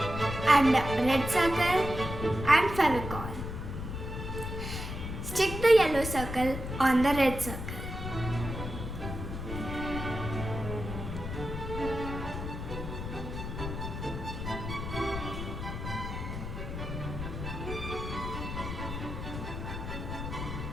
and a red circle and Fevicol. Stick the yellow circle on the red circle.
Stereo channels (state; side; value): noise; left; rumble, 6 dB below the sound